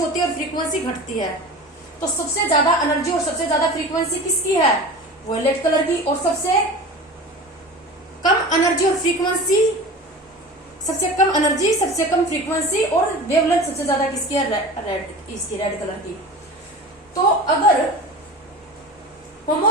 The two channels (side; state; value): both; normal; correlation 0.34